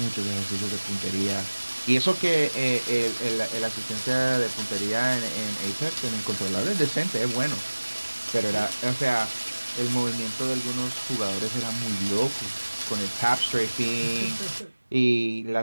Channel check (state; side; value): inverted; both; correlation -1.00